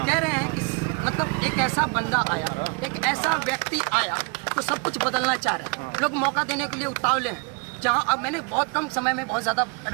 कह रहे हैं कि मतलब एक ऐसा बंदा आया, एक ऐसा व्यक्ति आया तो सब कुछ बदलना चाह रहे हैं। लोग मौका देने के लिए उतावले हैं। जहाँ अब मैंने बहुत कम समय में बहुत ज़्यादा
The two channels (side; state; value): left; quieter; 31.6 dB